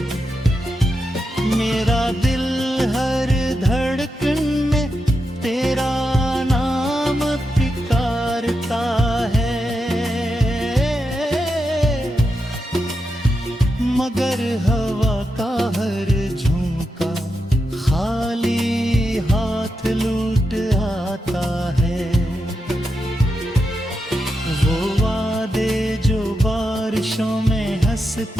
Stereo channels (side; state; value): both; normal; correlation 0.87